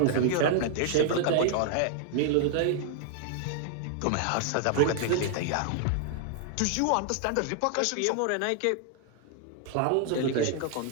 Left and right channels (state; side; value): different; both; correlation 0.00